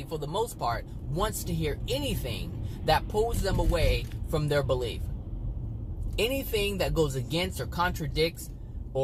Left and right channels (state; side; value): identical; both; correlation 1.00